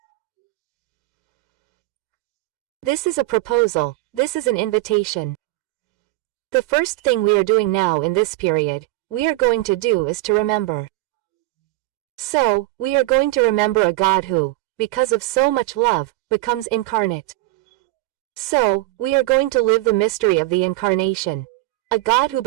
This is a proposal, this is an invitation. The first thing we are doing now in this period, we are going to do is to remember. So, we are going to remember a God who, because of so much love, becomes incarnate. So, we are going to live the mystery of the Incarnation. A God who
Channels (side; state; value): left; quieter; 18.9 dB